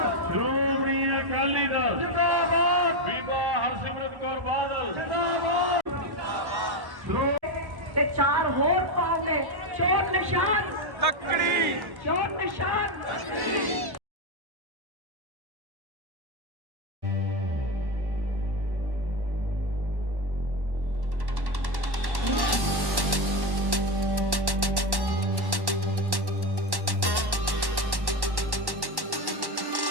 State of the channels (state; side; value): late; left; 1.1 ms